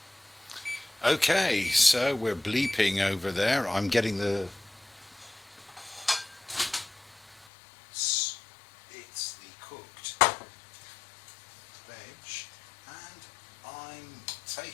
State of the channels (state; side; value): drops out; right; at 7.5 s